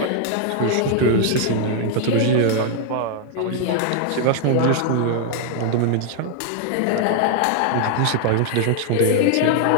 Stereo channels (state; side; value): different; both; correlation 0.00